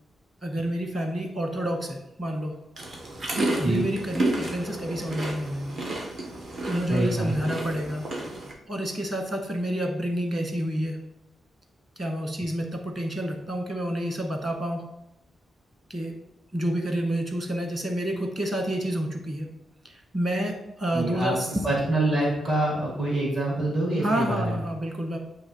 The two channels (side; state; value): both; normal; correlation 0.84